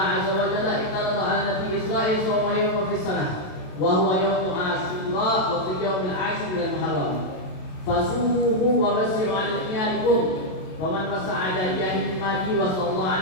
Azza wa Jalla iqtarada ala Nabi Israel sawma yawma fis sanah wa huwa yawmu Asyura wa fi yawmil 'ashri min al-Muharram fasuhu wa basiru 'ala iyalikum wa man masa'ada jahil madi wa sallallahu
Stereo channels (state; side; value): late; right; 27 ms